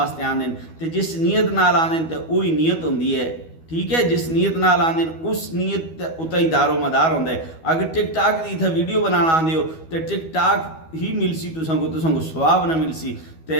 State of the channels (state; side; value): late; right; 12 ms